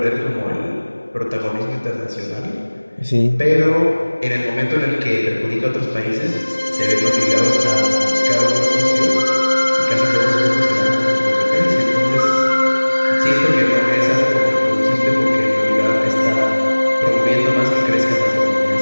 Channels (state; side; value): inverted; both; correlation -1.00